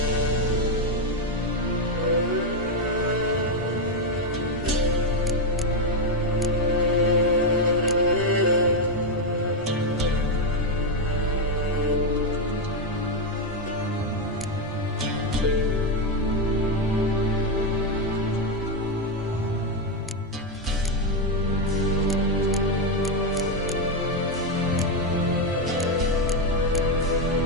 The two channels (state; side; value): normal; both; correlation 0.06